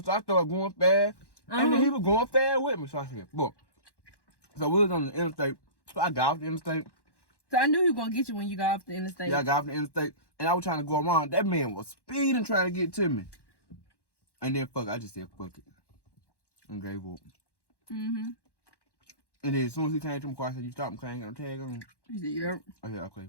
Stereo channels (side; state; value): right; late; 1.1 ms